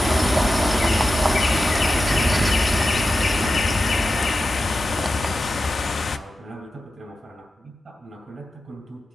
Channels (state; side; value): normal; both; correlation 0.92